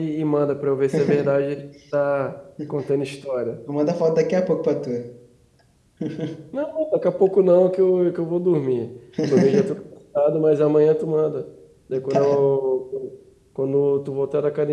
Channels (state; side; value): identical; both; correlation 1.00